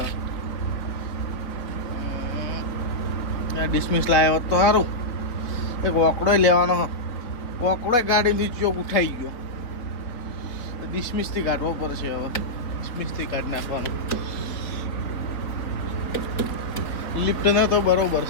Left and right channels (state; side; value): late; right; 4.1 ms